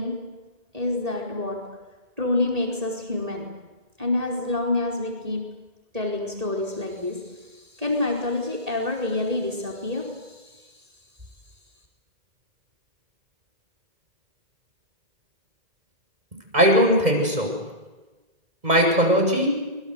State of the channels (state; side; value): late; left; 2.0 ms